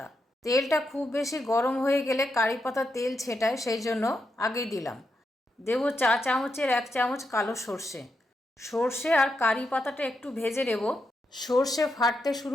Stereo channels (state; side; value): normal; both; correlation 0.83